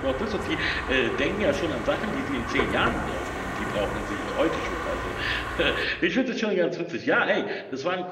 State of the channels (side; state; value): both; identical; correlation 1.00